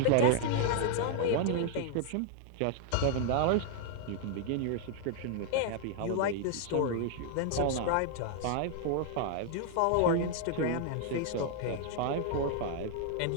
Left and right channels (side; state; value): both; different; correlation -0.01